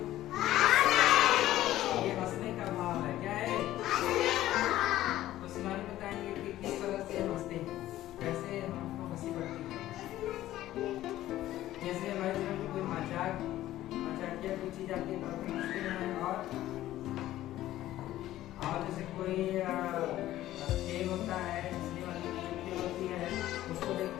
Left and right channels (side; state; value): right; quieter; 14.3 dB